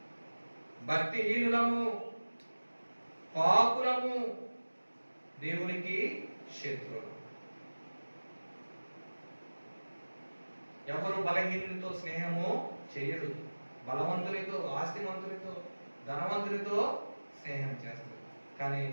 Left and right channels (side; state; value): both; inverted; correlation -1.00